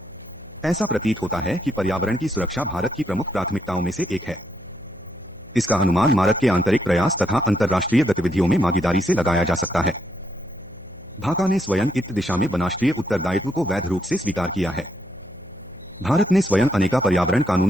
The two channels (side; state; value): left; noise; hum, 25 dB below the sound